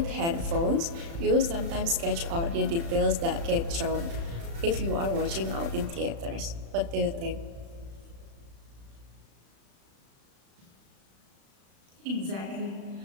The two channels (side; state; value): left; late; 36 ms